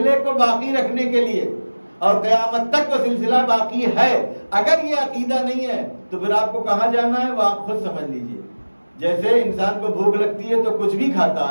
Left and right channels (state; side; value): inverted; both; correlation -1.00